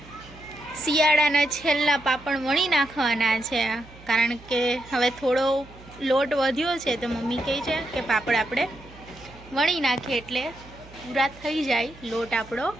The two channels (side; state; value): right; noise; hum, 21 dB below the sound